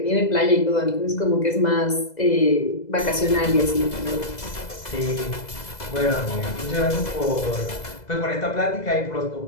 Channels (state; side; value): late; right; 2.0 ms